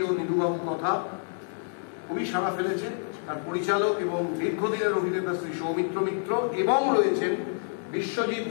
ও নিধুবাবু কথা, খুবই সাড়া ফেলেছে। তার পরিচালক এবং দীর্ঘদিনের অভিনেতা শ্রী সৌমিত্র মিত্র, এবং রয়েছেন বিশ্বজিৎ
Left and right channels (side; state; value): right; silent; digital silence